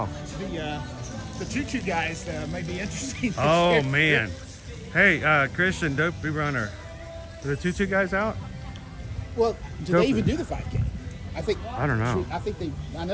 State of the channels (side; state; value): both; identical; correlation 1.00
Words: The tutu guys may be interesting. Oh year. man. Hey, Christian, dopey runner. Are the tutu guys out? Well, do Dopey. they even do the 5K? I don't know. I